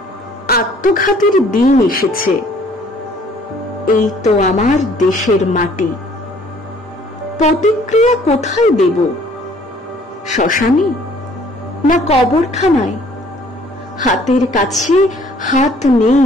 আত্মঘাতীর দিন এসেছে। এই তো আমার দেশের মাটি। প্রতিক্রিয়া কোথায় দেব? শ্মশানে না কবরখানায়? হাতের কাছে হাত নেই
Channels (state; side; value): normal; both; correlation 0.58